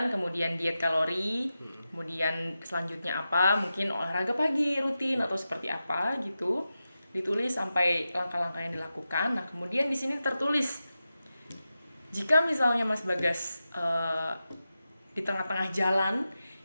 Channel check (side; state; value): both; inverted; correlation -0.91